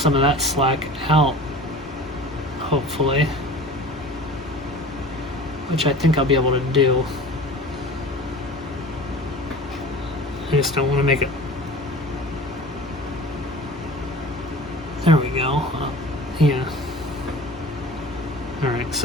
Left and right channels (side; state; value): both; normal; correlation 0.39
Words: of that slack out, hopefully, which I think I'll be able to do. I just don't want to make it. There we go. Yeah. Alright,